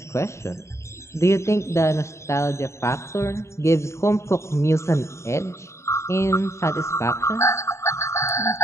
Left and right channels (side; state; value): right; late; 0.14 ms